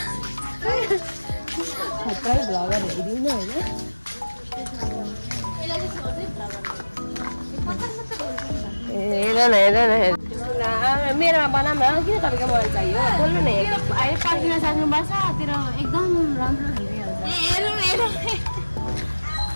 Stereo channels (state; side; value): inverted; both; correlation -1.00